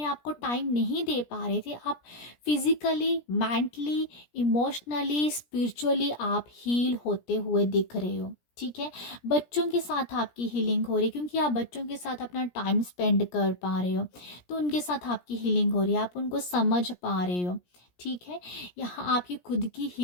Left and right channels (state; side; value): late; right; 17 ms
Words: आप को टाइम नहीं दे पा रहे थे, आप फिजिकली, मेंटली, इमोशनली, स्पिरिचुअली आप हील होते हुए दिख रहे हो। ठीक है, बच्चों के साथ आपकी हीलिंग हो रही है, क्योंकि आप बच्चों के साथ अपना टाइम स्पेंड कर पा रहे हो, तो उनके साथ आपकी हीलिंग हो रही है, आप उनको समझ पा रहे हो। ठीक है, यहाँ आपकी खुद की